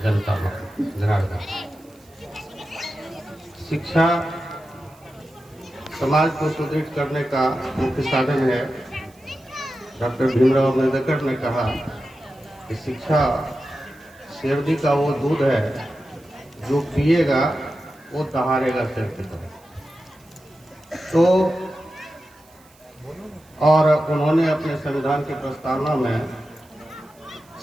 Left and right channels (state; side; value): noise; right; hiss, 29 dB below the sound